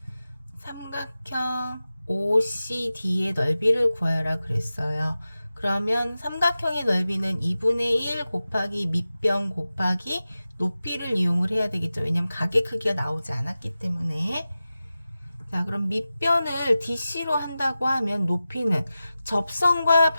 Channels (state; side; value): inverted; both; correlation -0.94